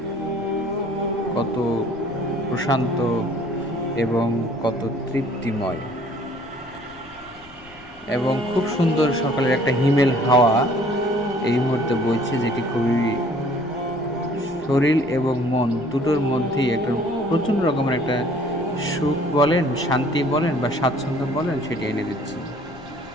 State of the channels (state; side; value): noise; left; rumble, 25 dB below the sound